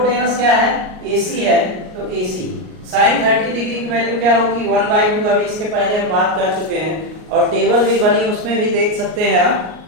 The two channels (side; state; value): left; late; 38 ms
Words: क्या है AC है, तो AC साइन 30 डिग्री की वैल्यू क्या होगी 1/2। अभी इसके पहले हम बात कर चुके हैं और टेबल भी बनी, उसमें भी देख सकते हैं आप,